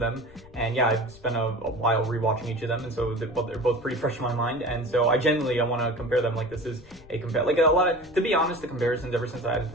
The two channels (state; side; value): noise; left; rumble, 22 dB below the sound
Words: And yeah, I've spent a while rewatching each of them, and so they're both pretty fresh in my mind. And so I want to compare them. Like, this is a compare, like a lot of, to be honest, the comparisons ever since I added